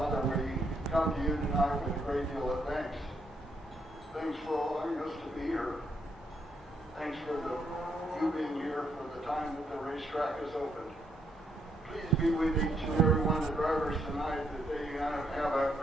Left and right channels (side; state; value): both; normal; correlation 0.75